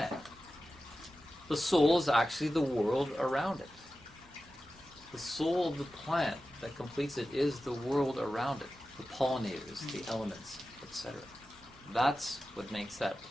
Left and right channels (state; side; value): normal; both; correlation 0.94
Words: The soul is actually the world around it. The soul of the plant that completes it is the world around it, the pollinators, the elements, etc. That's what makes that